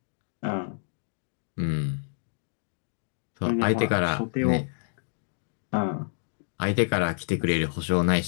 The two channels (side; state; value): right; silent; digital silence